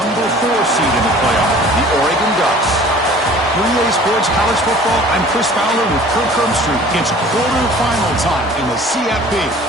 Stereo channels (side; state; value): both; normal; correlation 0.48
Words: 4 seed in the playoff, the Oregon Ducks. For EA Sports College Football, I'm Chris Fowler with Kirk Herbstreit. It's quarterfinal time in the CFP,